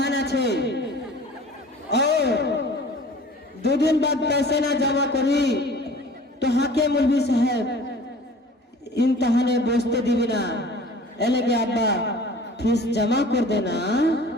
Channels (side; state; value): both; normal; correlation 0.45